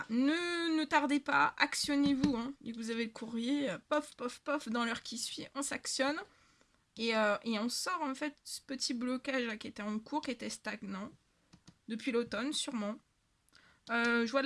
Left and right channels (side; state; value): both; identical; correlation 1.00